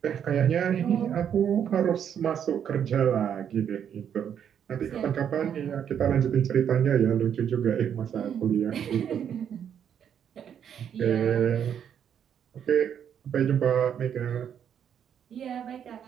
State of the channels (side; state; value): left; quieter; 8.7 dB